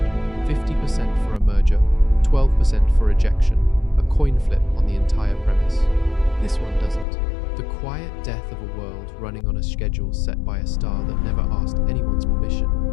50% for a merger, 12% for ejection, a coin flip on the entire premise. This one doesn't. The quiet death of a world running on a schedule set by a star that never asked anyone's permission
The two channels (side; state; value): right; drops out; at 7.1 s